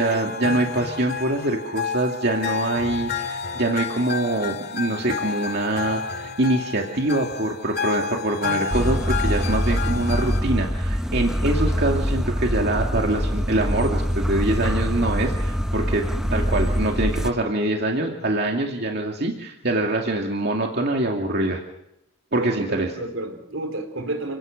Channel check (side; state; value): both; normal; correlation 0.41